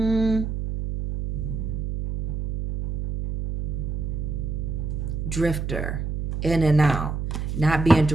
drifter, in and out, not being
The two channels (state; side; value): noise; right; hum, 3 dB below the sound